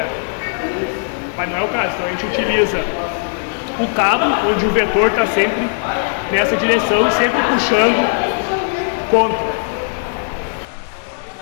Mas não é o caso. Então a gente utiliza o cabo, onde o vetor está sempre nessa direção e sempre puxando contra.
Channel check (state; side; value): silent; right; 61 dB below the other